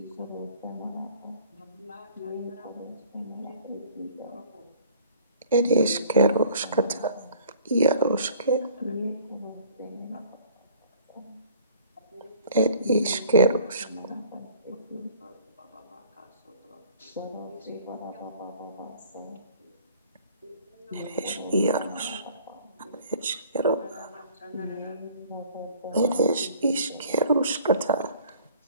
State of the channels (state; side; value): inverted; both; correlation -0.52